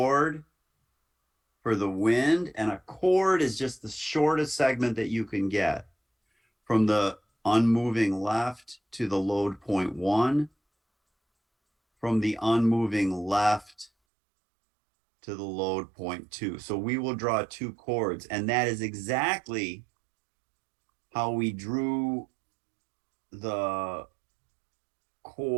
for the wind, and a chord is just the shortest segment that you can get from the unmoving left to the load point 1, from the unmoving left to the load point 2. So we will draw 2 chords, and that is exactly how we drew the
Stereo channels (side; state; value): left; drops out; at 13.9 s